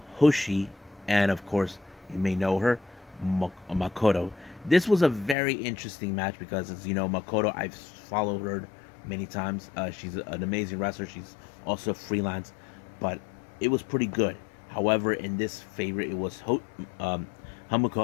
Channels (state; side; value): drops out; right; at 5.4 s